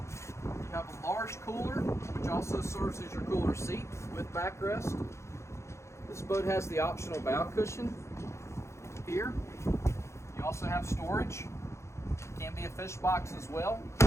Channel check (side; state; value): right; late; 0.14 ms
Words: have a large cooler, which also serves as your cooler seat with backrest. This boat has the optional bow cushion here. You also have storage. Can be a fish box as well.